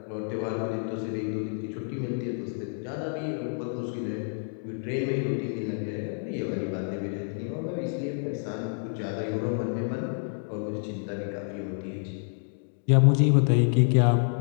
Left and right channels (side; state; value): right; silent; digital silence